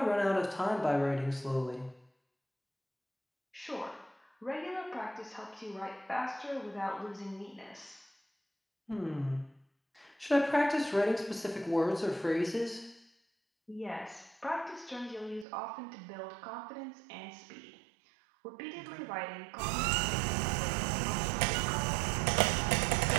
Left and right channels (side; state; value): left; drops out; at 15.5 s